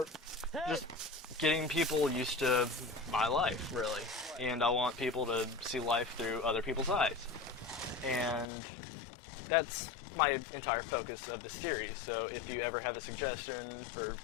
just getting people used to my life, really. And I want people to see life through other people's eyes. And that's my entire focus of the series. So if you ever have a suggestion for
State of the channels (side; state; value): right; drops out; at 8.5 s